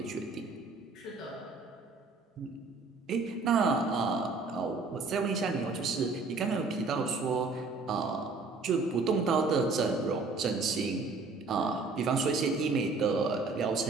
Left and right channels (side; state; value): left; quieter; 4.0 dB